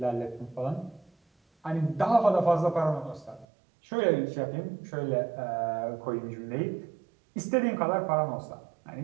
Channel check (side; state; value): left; drops out; at 3.5 s